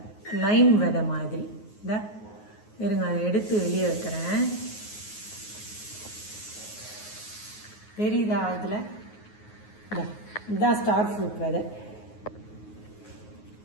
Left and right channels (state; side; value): late; right; 9.5 ms